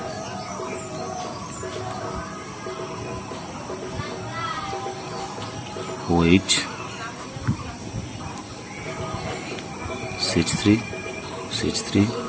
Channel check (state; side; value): identical; both; correlation 1.00